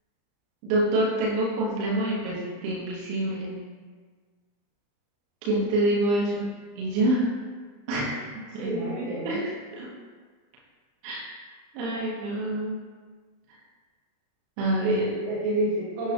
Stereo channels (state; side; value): late; left; 35 ms